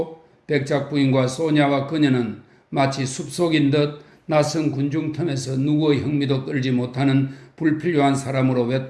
백작 부인과 소냐와 그녀는 마치 숲속인 듯 낯선 군중 틈에서 누구의 흥미도 끌지 못하는 불필요한 사람으로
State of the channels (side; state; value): both; identical; correlation 1.00